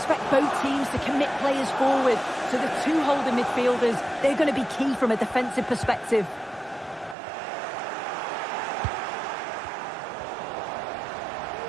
both teams to commit players forward. So the two holding midfielders, they're going to be key from a defensive perspective.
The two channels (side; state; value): left; drops out; at 7.2 s